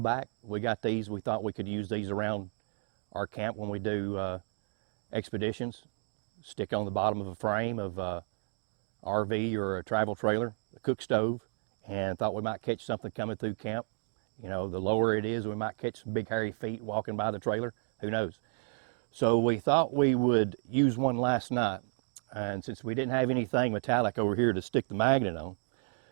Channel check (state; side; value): silent; left; 56 dB below the other